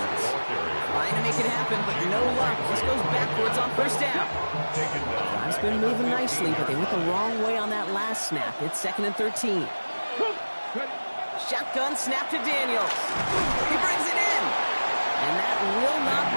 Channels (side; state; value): both; inverted; correlation -1.00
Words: Trying to make it happen, but no luck. This goes backwards on first down. Drive's been moving nicely, but they went the wrong way on that last snap. It's 2nd and 13. Shotgun snap to Daniels. He brings it in. And that will not